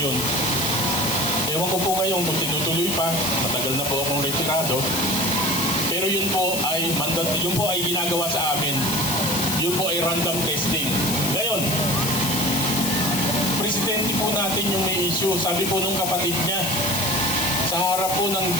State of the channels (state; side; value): noise; left; hiss, 2 dB below the sound